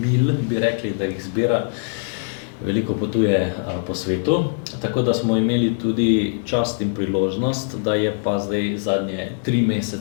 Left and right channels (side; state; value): right; silent; digital silence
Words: bi rekli, da jih zbira. Veliko potuje po svetu, tako da smo imeli tudi čast in priložnost, da je pa zdaj zadnje 3